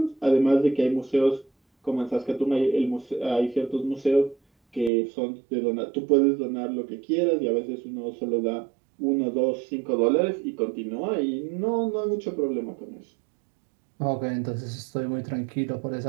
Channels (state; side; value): drops out; left; at 4.9 s